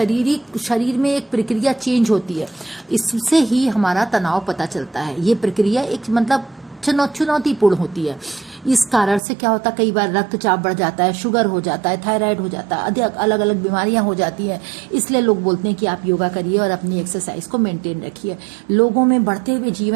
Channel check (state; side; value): drops out; left; at 9.2 s